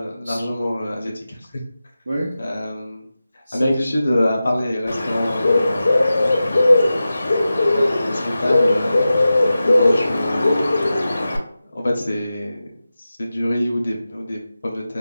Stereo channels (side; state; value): both; inverted; correlation -0.94